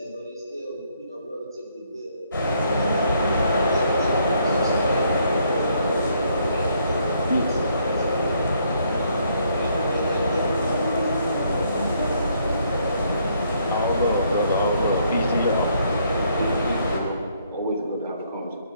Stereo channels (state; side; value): inverted; both; correlation -0.70